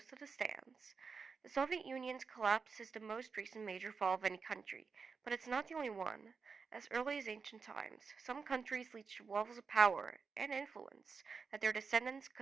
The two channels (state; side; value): quieter; left; 5.2 dB